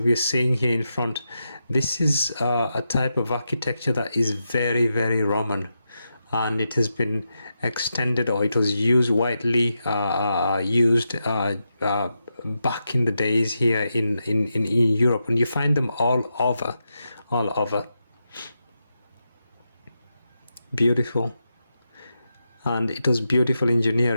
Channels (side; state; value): both; inverted; correlation -0.87